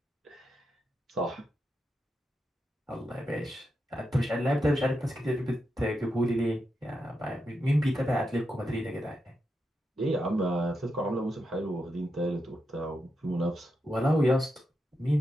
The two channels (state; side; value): normal; both; correlation 0.86